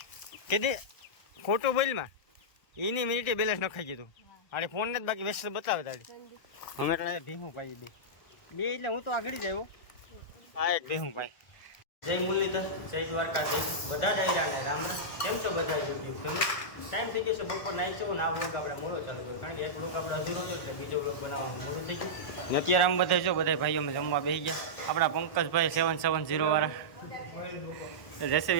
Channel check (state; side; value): late; right; 1.3 ms